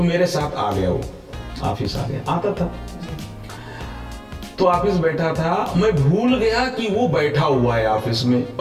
मेरे साथ आ गया, वो ऑफिस आ गया, आता था तो ऑफिस बैठा था, मैं भूल गया कि वो बैठा हुआ है ऑफिस में,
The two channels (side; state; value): both; identical; correlation 1.00